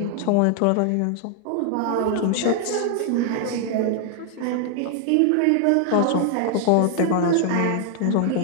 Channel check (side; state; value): both; different; correlation 0.00